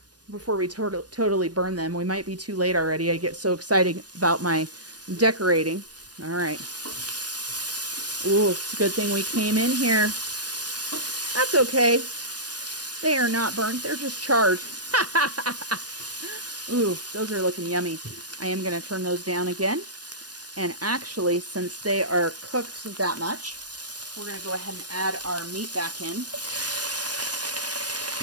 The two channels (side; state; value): left; late; 0.69 ms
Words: totally burn them. We might be too late already. I get so excited about my decorating. All right. Ooh, it's a good thing we came in here. That's okay. They are not burnt. They're just charred. Ooh, those are looking yummy. I am going to turn those down again. And actually, since they are cooked that much, we're going to go ahead and add our meat back in.